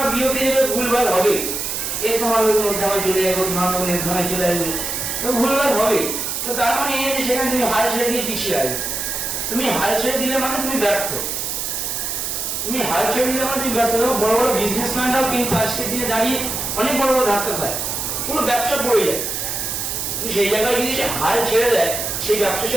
বিওপি দেবে, ভুলভাল হবে, এ তোমার নির্ধারণে চলে যাবে, তোমার নির্ধারণে চলে আসবে, তো ভুলভাল হবে। তো তার মানে এই যে সেখানে তুমি হাল ছেড়ে দিয়ে পিছিয়ে আসবে। তুমি হাল ছেড়ে দিলে মানে তুমি ব্যর্থ। তুমি হাল ছেড়ে দিলে মানে তুমি ব্যর্থ। বড় বড় বিজনেসম্যানরাও কিন্তু আজকের দিনে দাঁড়িয়ে অনেক বড় বড় ধাক্কা খায়, পুরো ব্যবসা পড়ে যায়। সেই জায়গায় যদি সে হাল ছেড়ে দেয়, সেই ব্যবসা সে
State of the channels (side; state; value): right; noise; hiss, 3 dB below the sound